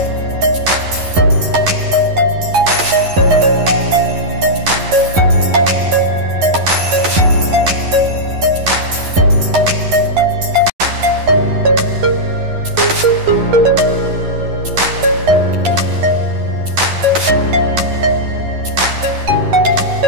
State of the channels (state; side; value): late; left; 11 ms